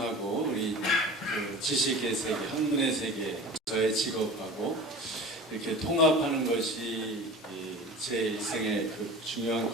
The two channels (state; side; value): normal; both; correlation 0.37